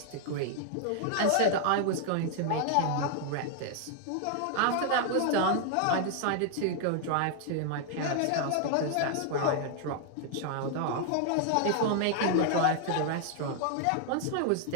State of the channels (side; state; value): both; different; correlation 0.00